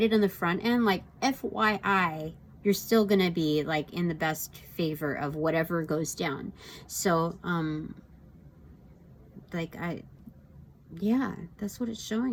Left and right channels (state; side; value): identical; both; correlation 1.00